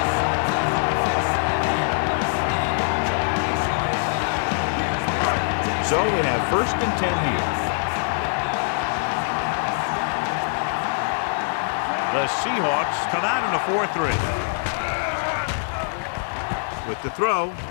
So they have first and 10 here. The Seahawks come out in a 4-3. With the throw.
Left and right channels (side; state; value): right; silent; digital silence